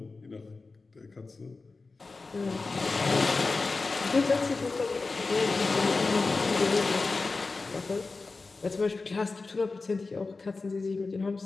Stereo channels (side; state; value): right; quieter; 3.9 dB